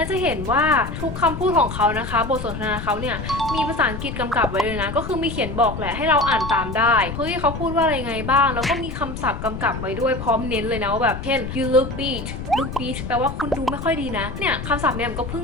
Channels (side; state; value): left; noise; rumble, 7 dB below the sound